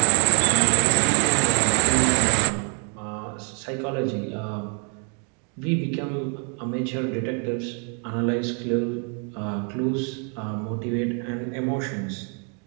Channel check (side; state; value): left; quieter; 39.6 dB